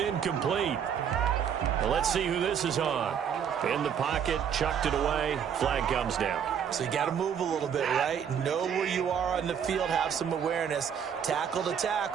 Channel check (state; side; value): quieter; left; 8.0 dB